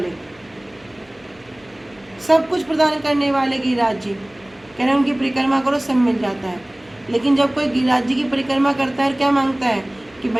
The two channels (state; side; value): noise; left; hum, 29 dB below the sound